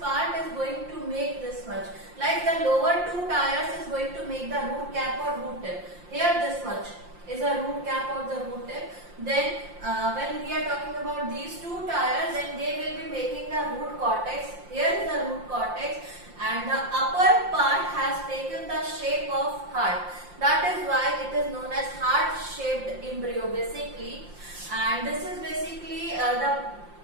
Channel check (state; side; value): late; left; 5.7 ms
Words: is going to make this much, like the lower two tires is going to make the root cap or root tip. Here this much is a root cap or the root tip. Then when we are talking about these two tires, then they will be making the root cortex. Here is the root cortex, and the upper part has taken the shape of heart. That is why it is known as heart-shaped embryo basically. And this is basically the